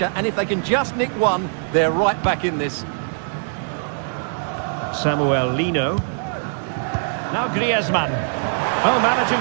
and if they can just nick one, they're right back in this. Samuel Lino. Now Griezmann. Oh,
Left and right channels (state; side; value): silent; left; digital silence